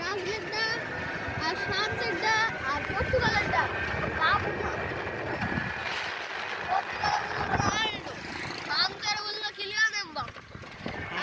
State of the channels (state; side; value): identical; both; correlation 1.00